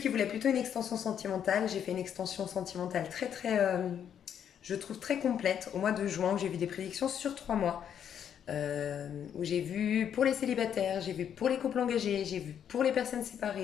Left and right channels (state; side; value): quieter; right; 8.9 dB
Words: voulaient plutôt une extension sentimentale, j'ai fait une extension sentimentale je trouve très complète au mois de juin, où j'ai vu des prédictions sur 3 mois. Où j'ai vu pour les célibataires, j'ai vu pour les couples engagés, j'ai vu pour les personnes